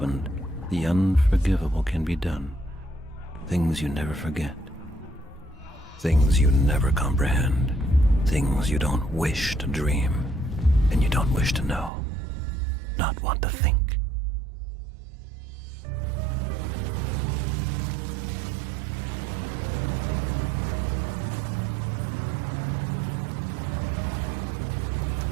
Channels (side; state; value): left; drops out; at 11.9 s